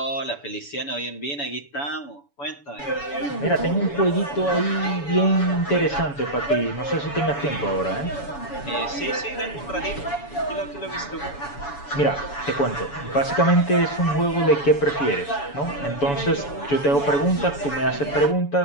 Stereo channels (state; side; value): late; right; 7.0 ms